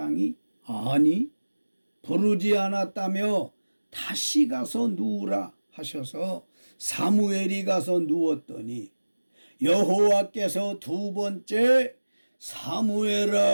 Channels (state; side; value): inverted; both; correlation -1.00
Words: 아니 부르지 않았다며 다시 가서 누우라 하셔서 사무엘이 가서 누웠더니 여호와께서 두 번째 사무엘아